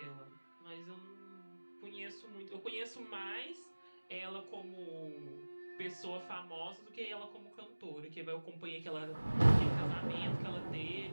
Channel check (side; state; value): both; inverted; correlation -1.00